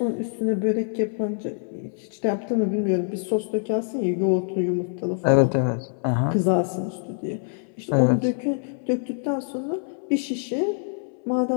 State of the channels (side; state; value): right; silent; 62 dB below the other